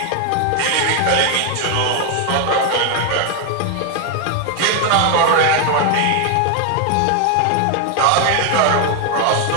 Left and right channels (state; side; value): different; both; correlation 0.01